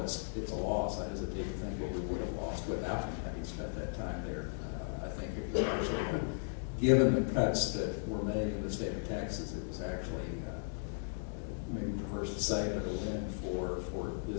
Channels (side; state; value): right; silent; digital silence